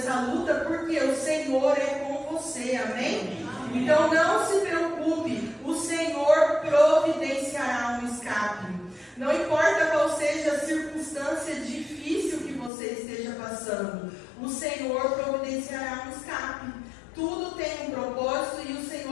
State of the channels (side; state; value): right; drops out; at 12.7 s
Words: luta, porque o Senhor é com você. Amém? Então não se preocupe. O Senhor providenciará um escape. Não importa qual seja a circunstância difícil que você esteja passando, o Senhor providenciará um escape. Tudo tem um propósito e o